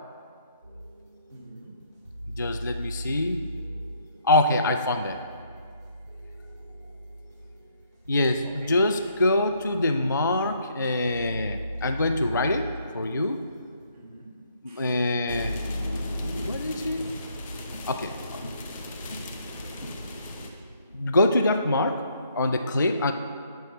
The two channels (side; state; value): both; inverted; correlation -0.68